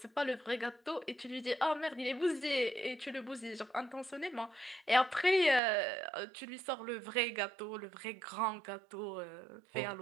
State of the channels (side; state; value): left; drops out; at 5.6 s